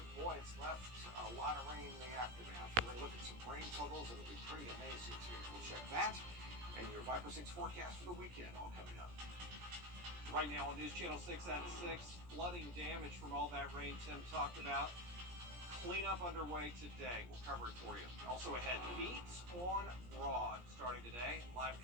boy, it's left a lot of rain in the aftermath. We're going to look at some rain totals. It'll be pretty amazing too. We'll check that and your Viper 6 forecast for the weekend all coming up. right now on News Channel 6 at 6. Flooding damage from all that rain Tim talked about. Cleanup underway today. We'll cover it for you. Also ahead, Beats on Broad starting today. Live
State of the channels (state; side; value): late; left; 17 ms